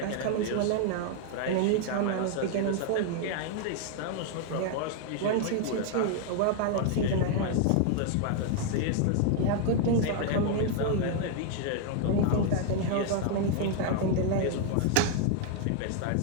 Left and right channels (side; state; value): both; different; correlation 0.00